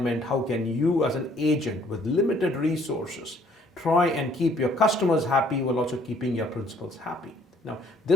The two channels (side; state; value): both; normal; correlation 0.61